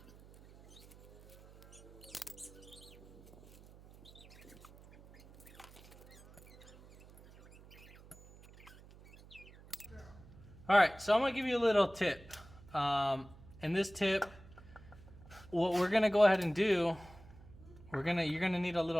All right, so I'm gonna give you a little tip. And this tip, what we're gonna go ahead and do, you're gonna need a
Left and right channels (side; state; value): right; noise; hum, 21 dB below the sound